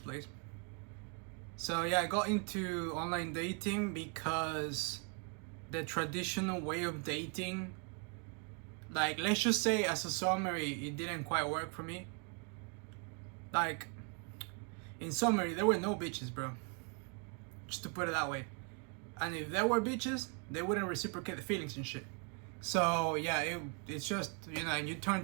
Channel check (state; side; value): quieter; left; 36.9 dB